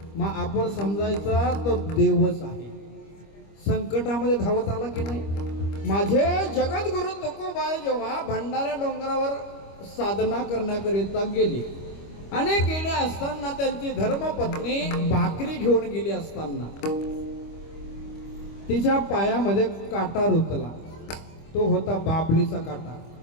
मग आपण समजायचा तो देवच आहे. संकटामध्ये धावत आला की नाही? माझे जगद्गुरु तुकोबाई जेव्हा भंडारा डोंगरावर साधना करण्याकरिता गेली आणि गेले असताना त्यांची धर्मपत्नी भाकरी घेऊन गेली असताना तिच्या पायामध्ये काटा रुतला. तो होता बाबलीचा काटा.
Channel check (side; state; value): right; late; 25 ms